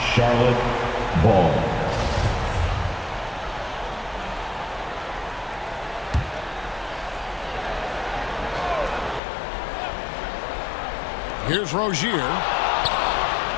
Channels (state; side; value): drops out; right; at 9.2 s